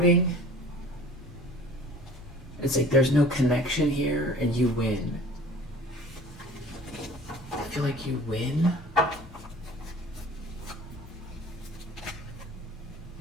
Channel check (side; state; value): both; normal; correlation 0.46